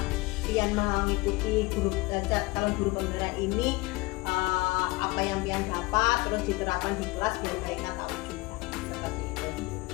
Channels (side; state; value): right; quieter; 23.4 dB